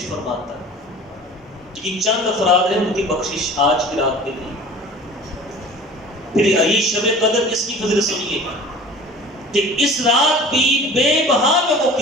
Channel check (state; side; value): normal; both; correlation 0.42